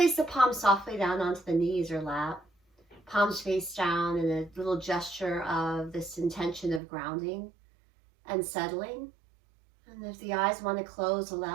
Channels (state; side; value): drops out; left; at 6.8 s